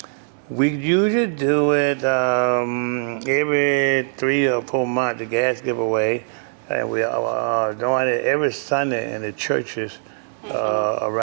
we usually do it every 3 or 4 months, the gas giveaway. And we are doing it every Sunday in the churches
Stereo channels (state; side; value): silent; left; digital silence